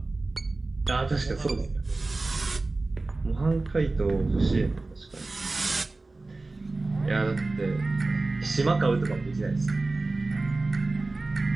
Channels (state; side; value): quieter; left; 3.3 dB